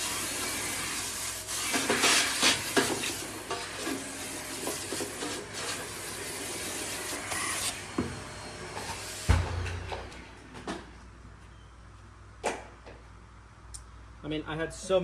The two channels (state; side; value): identical; both; correlation 1.00